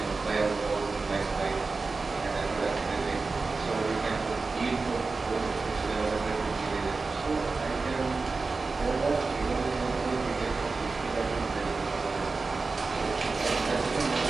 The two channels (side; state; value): left; quieter; 4.0 dB